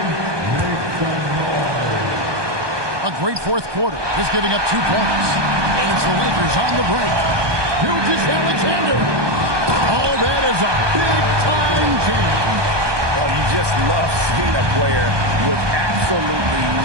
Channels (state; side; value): late; left; 1.2 ms